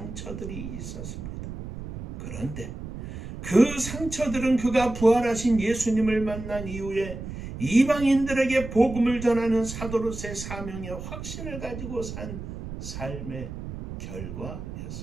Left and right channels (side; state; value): right; noise; rumble, 9 dB below the sound